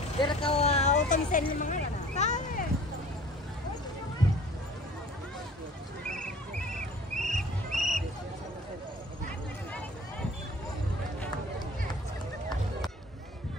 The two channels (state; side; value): normal; both; correlation 0.47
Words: Biar kau auto bisa ini mana?